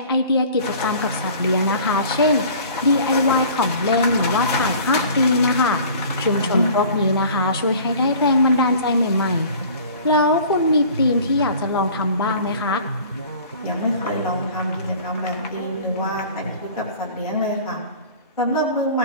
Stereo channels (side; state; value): both; inverted; correlation -0.46